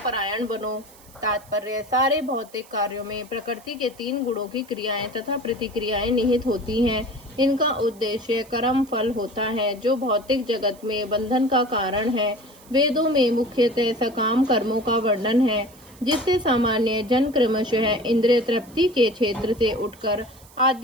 बनो। तात्पर्य: सारे भौतिक कार्यों में प्रकृति के 3 गुणों की क्रियाएं तथा प्रतिक्रियाएं निहित होती हैं। इनका उद्देश्य कर्म फल होता है, जो भौतिक जगत में बंधन का कारण है। वेदों में मुख्यतः सकाम कर्मों का वर्णन है, जिससे सामान्य जन क्रमशः इंद्रिय तृप्ति के क्षेत्र से उठकर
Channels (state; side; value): noise; right; hiss, 24 dB below the sound